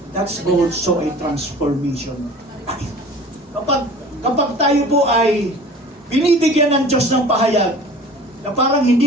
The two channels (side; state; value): both; normal; correlation 0.44